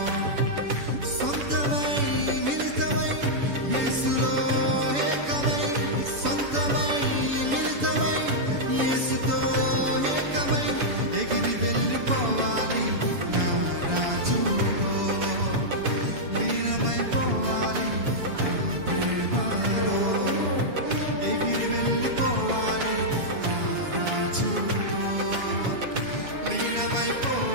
సొంతమై మిళితమై యేసులో ఏకమై, సొంతమై మిళితమై యేసుతో ఏకమై ఎగిరి వెళ్ళిపోవాలి నా రాజుతో, లీనమైపోవాలి నా ప్రేమలో, ఎగిరి వెళ్ళిపోవాలి నా రాజుతో,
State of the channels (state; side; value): late; left; 7.0 ms